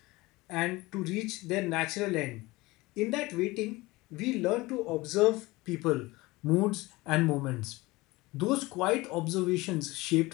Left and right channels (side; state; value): right; quieter; 21.2 dB